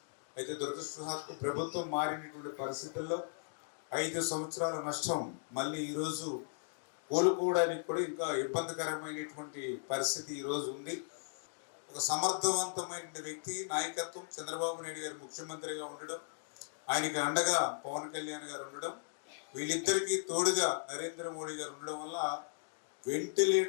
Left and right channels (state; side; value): silent; right; digital silence